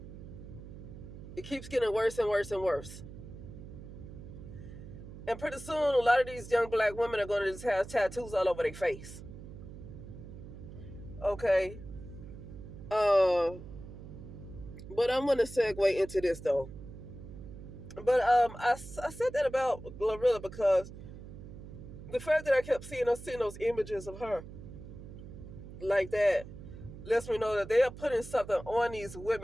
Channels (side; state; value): right; noise; hum, 13 dB below the sound